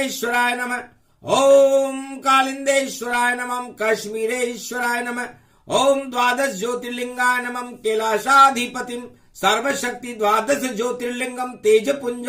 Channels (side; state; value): both; identical; correlation 1.00